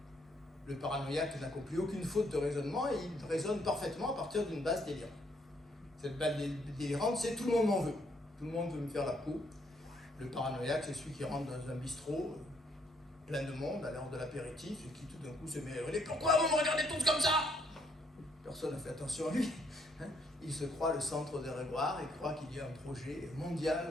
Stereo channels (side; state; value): both; normal; correlation 0.70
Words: Le paranoïaque n'accomplit aucune faute de raisonnement et il raisonne parfaitement à partir d'une base délirante. Cette base délirante, c'est tout le monde m'en veut. Tout le monde veut me faire la peau. Le paranoïaque, c'est celui qui rentre dans un bistrot plein de monde à l'heure de l'apéritif et qui tout d'un coup se met à hurler « Pourquoi vous me regardez tous comme ça ?» Personne n'a fait attention à lui. Il se croit le centre des regards et croit qu'il y a un projet